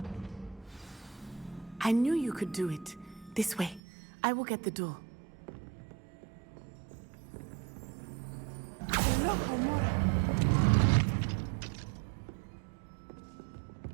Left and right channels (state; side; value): drops out; left; at 3.8 s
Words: I knew you could do it. This way. I will get the door. Loco, Mora.